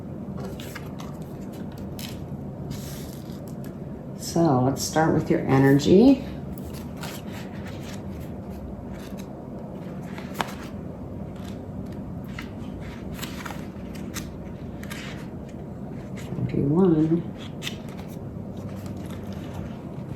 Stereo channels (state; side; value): identical; both; correlation 1.00